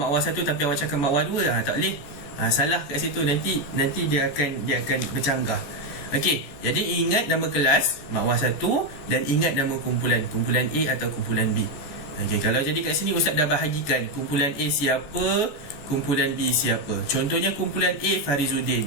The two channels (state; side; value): late; right; 14 ms